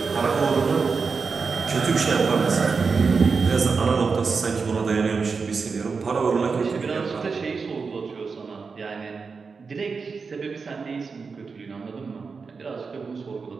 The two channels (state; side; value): quieter; left; 5.0 dB